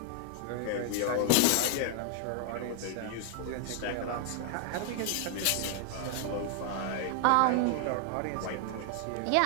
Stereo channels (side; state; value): both; different; correlation 0.00